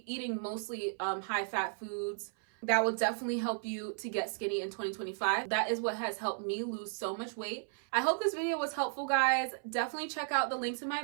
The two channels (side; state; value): left; silent; 55 dB below the other